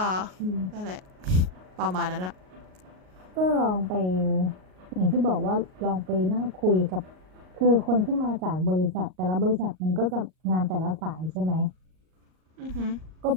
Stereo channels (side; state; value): left; late; 38 ms